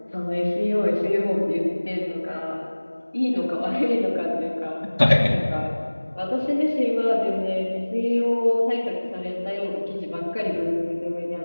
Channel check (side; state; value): both; inverted; correlation -1.00